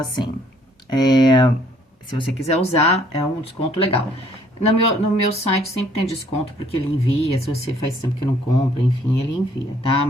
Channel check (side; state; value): both; normal; correlation 0.62